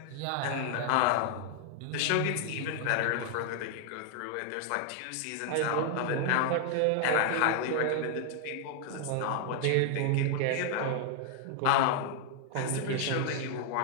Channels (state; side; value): different; both; correlation 0.00